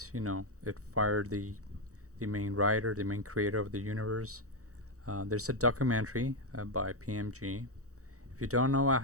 fired the main writer, the main creator of the universe. There's a documentary by PMG. If you don't know what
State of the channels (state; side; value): late; left; 0.65 ms